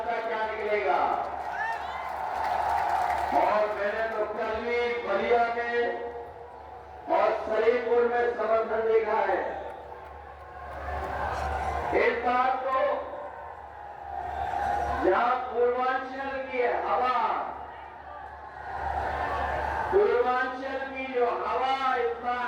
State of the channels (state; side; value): identical; both; correlation 1.00